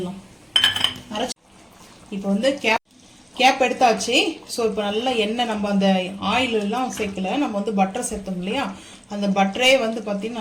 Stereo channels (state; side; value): identical; both; correlation 1.00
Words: இப்போ வந்து கேப் எடுத்தாச்சு. ஸோ இப்போ நல்லா எண்ணெய் நம்ம அந்த ஆயிலெல்லாம் சேர்க்கல, நம்ம வந்து பட்டர் சேர்த்தோம் இல்லையா, அந்த பட்டரே வந்து